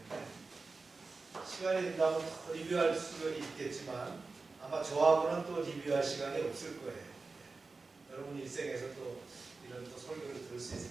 시간이 된다면 더 리뷰할 수가 있겠지만 아마 저하고는 또 리뷰할 시간이 없을 거예요. 여러분 일생에서 또 이런 또 설교를 들을 수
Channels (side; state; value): left; quieter; 4.0 dB